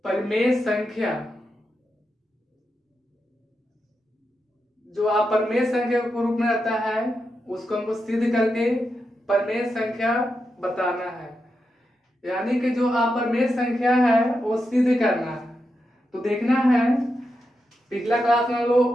परिमेय संख्या। जो अपरिमेय संख्या के रूप में रहता है उसको हमको सिद्ध करके परिमेय संख्या बताना है। यानी कि जो अपरिमेय संख्या है वो सिद्ध करना है। तो देखना है पिछला क्लास में हम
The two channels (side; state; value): both; normal; correlation 0.87